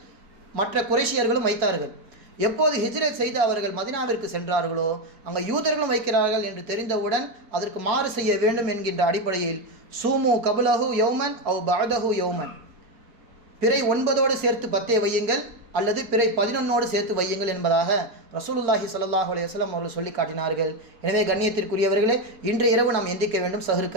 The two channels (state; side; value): late; left; 4.4 ms